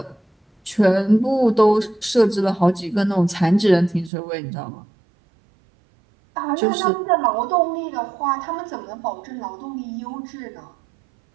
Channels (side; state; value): left; drops out; at 4.1 s